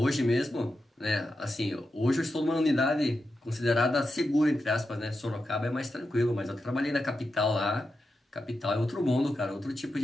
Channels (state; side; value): normal; both; correlation 0.89